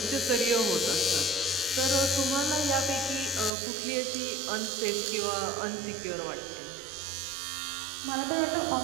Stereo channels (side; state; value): left; drops out; at 3.5 s